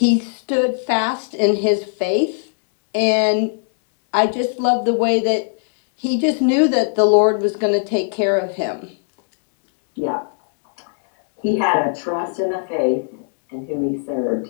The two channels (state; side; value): silent; right; 67 dB below the other